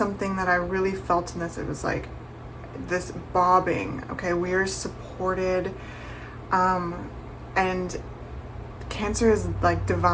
that I really felt in this. It was like this bobbing. Okay, we are supported, and Cancer is like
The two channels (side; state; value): both; identical; correlation 1.00